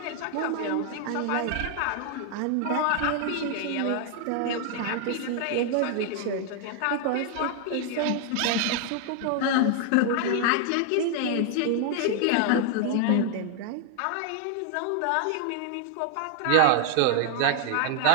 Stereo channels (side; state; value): both; different; correlation 0.00